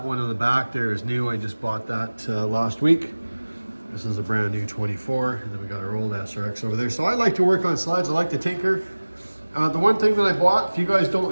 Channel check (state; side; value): inverted; both; correlation -1.00